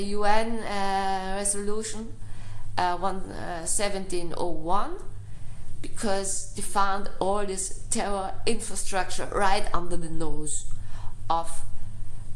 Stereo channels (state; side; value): identical; both; correlation 1.00